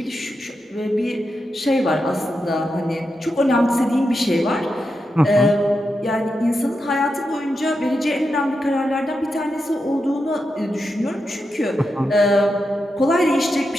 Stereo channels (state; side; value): normal; both; correlation 0.87